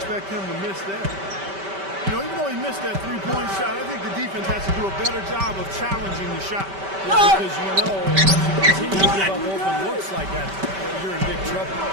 him to miss that. You know, even though he missed that three-point shot, I think the defense has to do a better job of challenging the shot. Yeah, because you know, if you continue to give up open looks like that, you're in big trouble.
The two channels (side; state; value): left; late; 5.2 ms